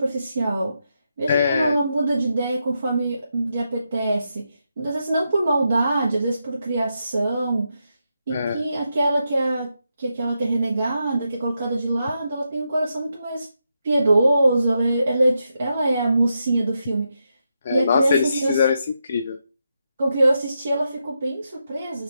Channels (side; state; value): both; inverted; correlation -0.84